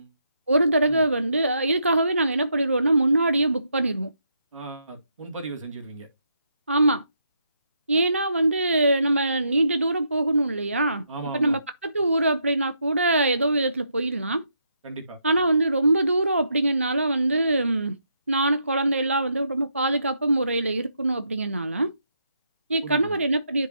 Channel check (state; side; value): inverted; both; correlation -0.78